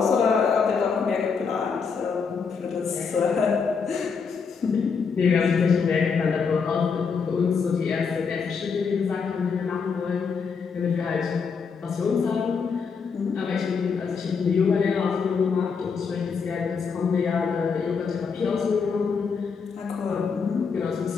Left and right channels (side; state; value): right; quieter; 5.7 dB